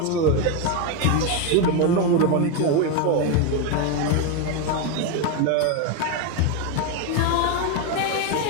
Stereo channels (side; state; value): both; different; correlation 0.02